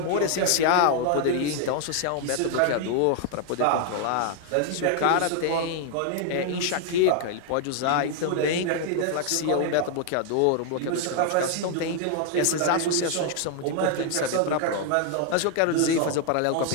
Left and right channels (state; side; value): different; both; correlation 0.00